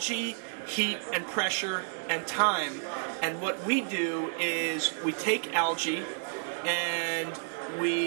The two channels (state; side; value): silent; left; digital silence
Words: heat and pressure and time. And what we do is we take algae and